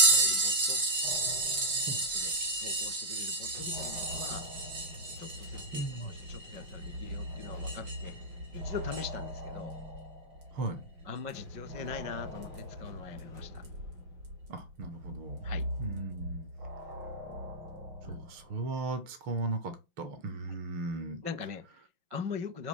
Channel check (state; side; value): late; left; 6.1 ms